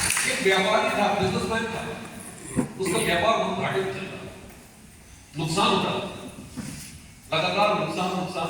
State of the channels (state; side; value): identical; both; correlation 1.00